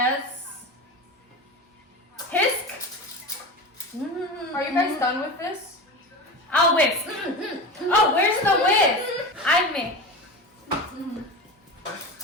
Hisk. Are you guys done with this? I'll whisk. Oh, where's the whisk? I mix.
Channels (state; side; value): normal; both; correlation 0.27